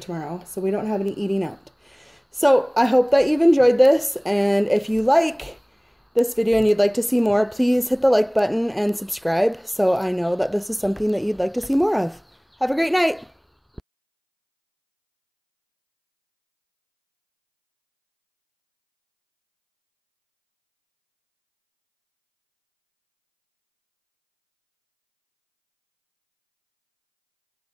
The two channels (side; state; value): both; identical; correlation 1.00